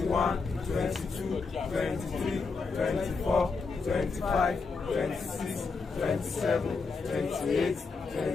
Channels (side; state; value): right; quieter; 4.5 dB